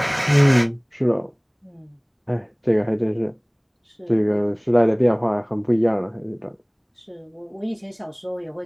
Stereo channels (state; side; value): identical; both; correlation 1.00